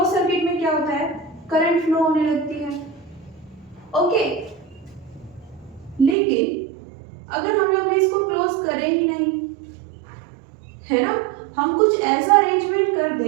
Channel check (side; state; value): left; drops out; at 6.2 s